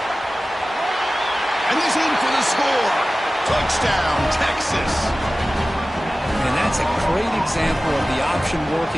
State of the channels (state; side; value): normal; both; correlation 0.96